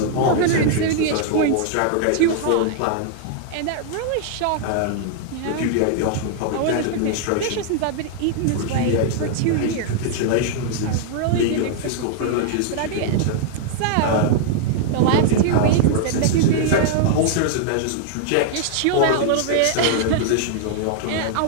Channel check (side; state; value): both; different; correlation -0.01